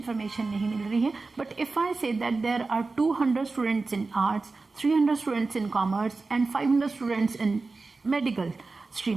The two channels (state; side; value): quieter; left; 3.8 dB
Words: नहीं मिल रही है. But if I say that there are 200 students in arts, 300 students in commerce and 500 students in medical